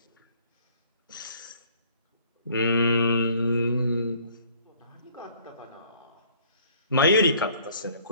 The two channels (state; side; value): inverted; both; correlation -0.57